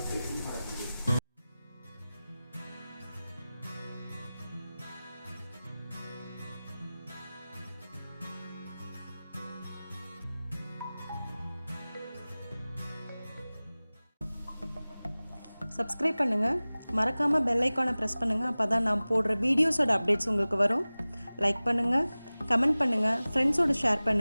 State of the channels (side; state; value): both; inverted; correlation -0.98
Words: சப்ஸ்கிரைப் பண்ணுங்கள். மறக்காமல் பெல் ஐக்கானை ப்ரெஸ் பண்ணுங்கள். அப்போ தான் நான் போடுற வீடியோஸோட அப்டேட்ஸ் உங்களுக்கு வரும். லைக் பண்ணுங்கள், கமெண்ட் பண்ணுங்கள், ஃப்ரெண்ட்ஸோடு ஷேர்